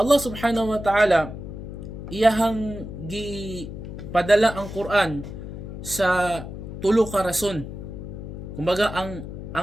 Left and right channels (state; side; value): noise; left; hum, 9 dB below the sound